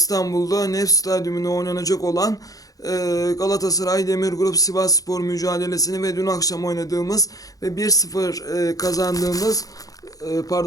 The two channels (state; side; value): late; right; 0.17 ms